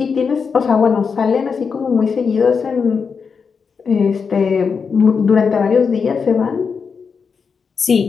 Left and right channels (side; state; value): right; quieter; 5.7 dB